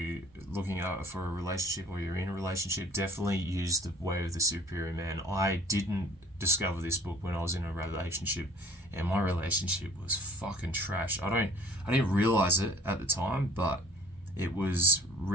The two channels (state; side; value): normal; both; correlation 0.51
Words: looking out for a relationship, or you're in a relationship, definitely use The Way of the Superior Man. I didn't discover this book when I was in a relationship, and my relationship was fucking trash. I didn't realize it at the time, but I was